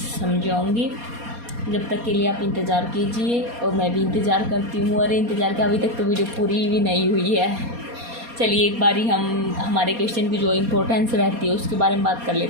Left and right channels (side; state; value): left; late; 4.2 ms